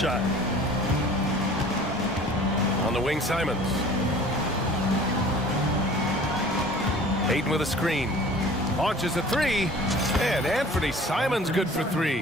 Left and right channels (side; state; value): both; normal; correlation 0.47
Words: On the wing, Simons. Aiden with a screen. Launches a 3. And Anthony Simons good for